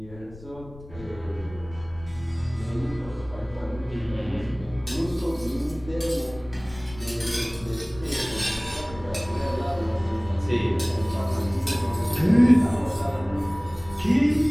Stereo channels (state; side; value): noise; left; rumble, 17 dB below the sound